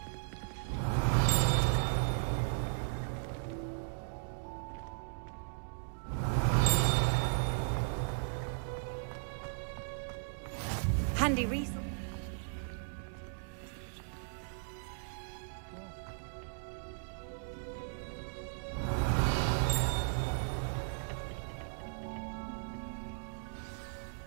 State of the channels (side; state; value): left; silent; digital silence